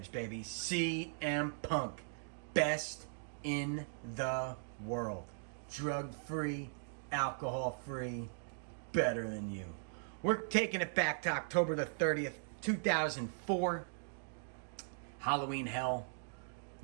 baby. CM Punk. Best in the world. Drug-free, alcohol-free, better than you. We're taking it back to October the 30th, 2004. Halloween Hell,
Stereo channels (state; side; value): silent; left; digital silence